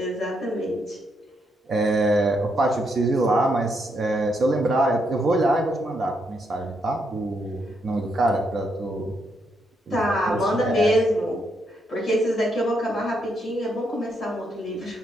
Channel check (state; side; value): normal; both; correlation 0.78